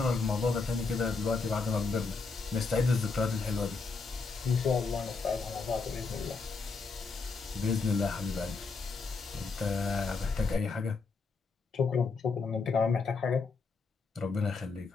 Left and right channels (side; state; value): right; quieter; 4.4 dB